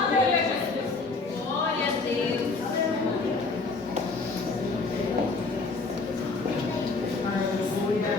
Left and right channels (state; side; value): quieter; right; 3.9 dB